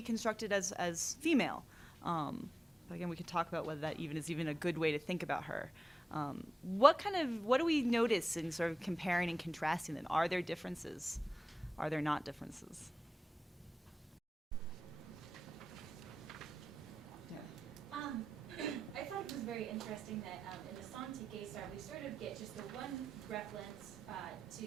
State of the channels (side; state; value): both; normal; correlation 0.94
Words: constructed as female. But again, we could talk about whether that is even a good way to think about her. What do we notice in sort of comparing and contrasting them? Are there differences? Are there not differences? I thought it was very interesting that in the song to Gesar, we sort of get just the one reference